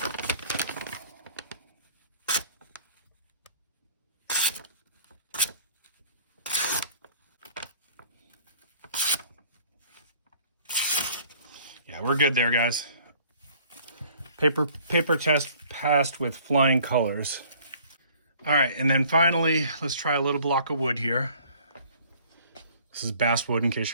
Yeah, we're good there, guys. Paper test passed with flying colors. All right, and then finally, let's try a little block of wood here. This is basswood, in case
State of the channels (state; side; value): inverted; both; correlation -0.54